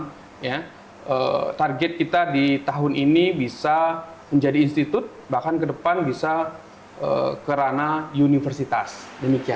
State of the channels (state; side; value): identical; both; correlation 1.00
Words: ya. Target kita di tahun ini bisa menjadi institut, bahkan ke depan bisa ke ranah universitas.